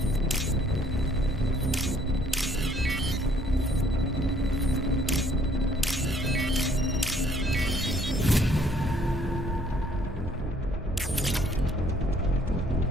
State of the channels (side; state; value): both; normal; correlation 0.63